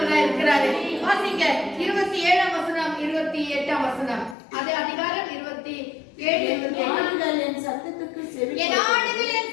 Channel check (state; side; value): drops out; right; at 4.4 s